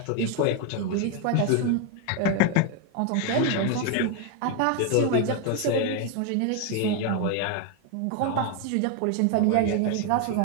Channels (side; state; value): both; different; correlation 0.01